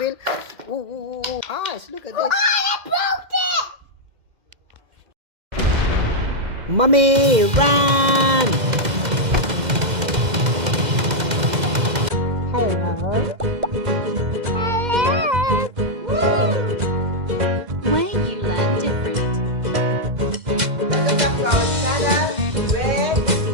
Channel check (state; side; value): late; left; 2.0 ms